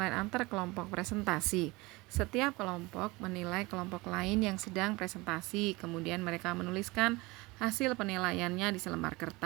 antar kelompok presentasi. Setiap kelompok menilai kelompok lain yang sedang presentasi, kemudian mereka menuliskan hasil penilaiannya di selembar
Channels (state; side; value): quieter; left; 23.1 dB